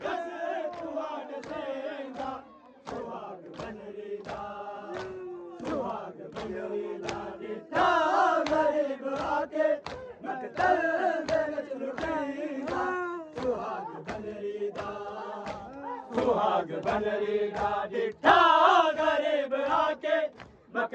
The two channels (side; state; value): both; identical; correlation 1.00